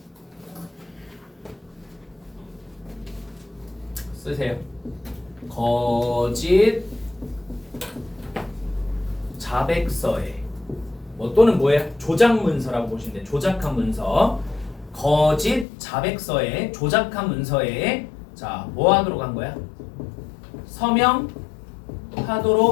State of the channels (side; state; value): right; drops out; at 15.7 s